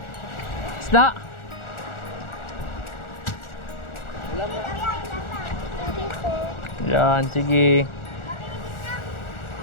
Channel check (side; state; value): right; late; 1.4 ms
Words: Isda? Yan, sige.